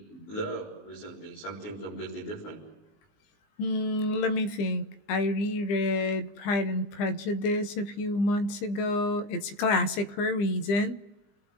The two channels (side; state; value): right; late; 20 ms